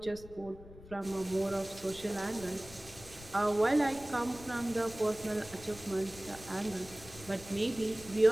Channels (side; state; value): left; noise; rumble, 18 dB below the sound